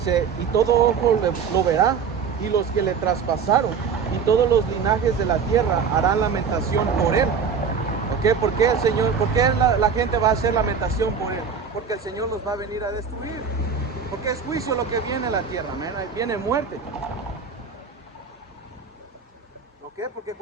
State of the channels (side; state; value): left; quieter; 6.1 dB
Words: y todo ojo lo verá, y los que le traspasaron, y todos los linajes de la tierra harán lamentación por él. ¿Ok? ¿Por qué el Señor, por qué la gente va a hacer lamentación por él? Porque el Señor los va a venir a destruir. Porque es juicio lo que viene a la tierra, man. Viene muerte. ¿Ok? Porque